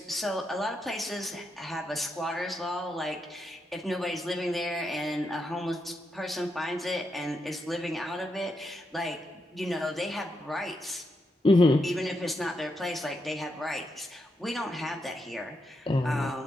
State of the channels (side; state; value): both; normal; correlation 0.83